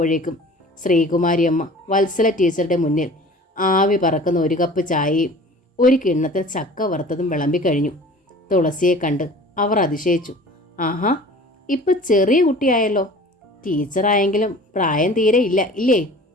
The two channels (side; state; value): both; normal; correlation 0.44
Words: ശ്രീകുമാരിയമ്മ വത്സല ടീച്ചറുടെ മുന്നിൽ ആവി പറക്കുന്ന ഒരു കപ്പ് ചായയും ഒരു കിണ്ണത്തിൽ ചക്ക വറുത്തതും വിളമ്പിക്കഴിഞ്ഞു. തുളസിയെ കണ്ട് അവർ അതിശയിച്ചു. ആഹാ, ഇപ്പം ചെറിയ കുട്ടിയായല്ലോ. ടീച്ചറായെങ്കിലും പ്രായം തീരെ ഇല്ല ഇല്ലേ?